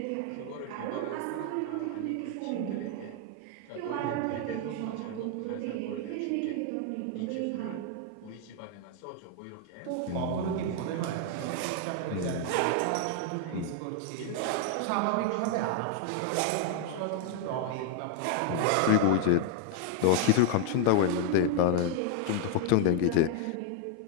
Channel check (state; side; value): different; both; correlation 0.00